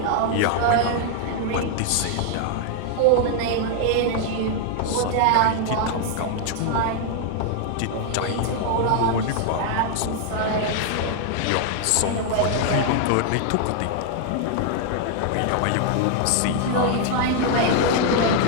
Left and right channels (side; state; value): both; different; correlation 0.00